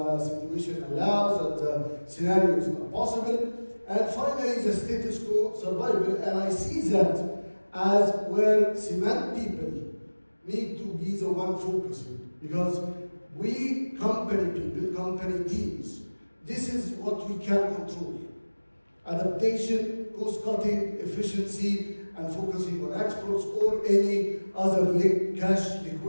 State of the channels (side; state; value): both; inverted; correlation -1.00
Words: situation allows, and the scenarios are possible. And finally, the status quo survival. And I see that as where cement people need to be the one focusing. Because we, company people, company teams, this is what we can control. Adaptation, cost-cutting, efficiency, and focusing on exports or any other cash